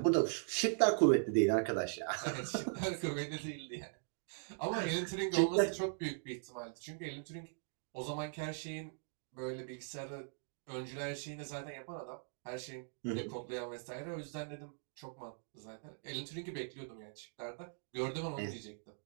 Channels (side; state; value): left; silent; digital silence